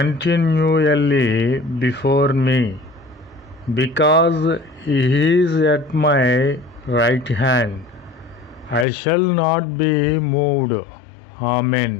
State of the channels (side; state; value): right; drops out; at 8.8 s